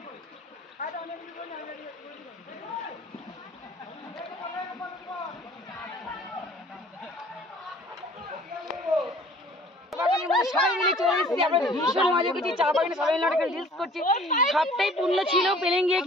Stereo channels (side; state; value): both; normal; correlation 0.51